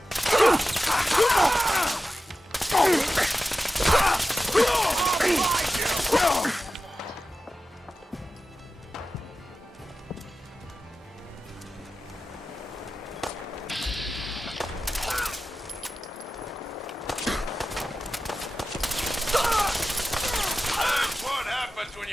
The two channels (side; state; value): both; normal; correlation 0.93